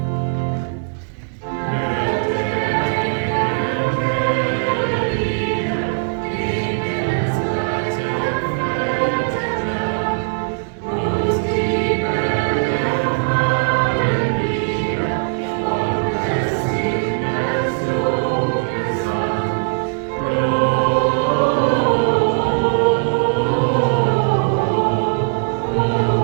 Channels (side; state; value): left; silent; 61 dB below the other